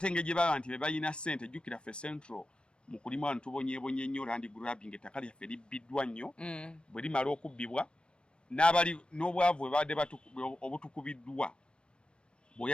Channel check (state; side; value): late; right; 0.055 ms